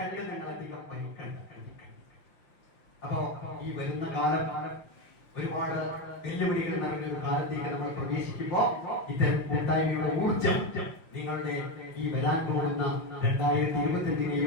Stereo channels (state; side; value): late; right; 6.0 ms